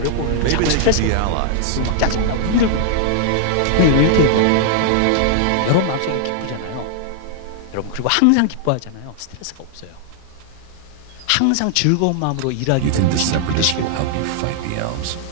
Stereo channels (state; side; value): different; both; correlation -0.01